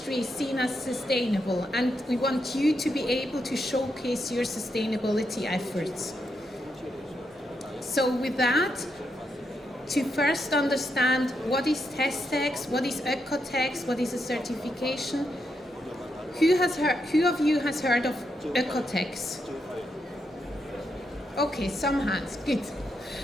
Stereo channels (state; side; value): normal; both; correlation 0.82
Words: is seen as sustainable, and we want you to be able to showcase your sustainability efforts. So with that, to first understand what is TESTEX, what is OEKO-TEX, what is a certification, who of you has heard of OEKO-TEX? Okay, some hands, good.